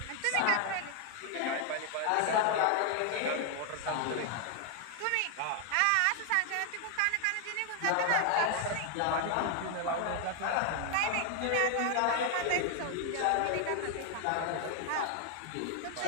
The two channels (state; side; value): different; both; correlation 0.00